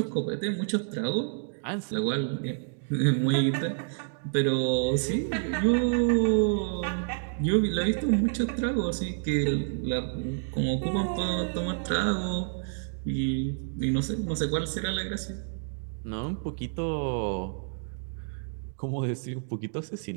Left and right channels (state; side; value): silent; left; digital silence